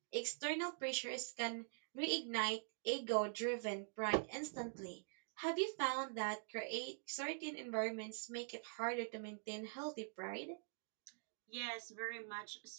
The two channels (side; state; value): left; silent; digital silence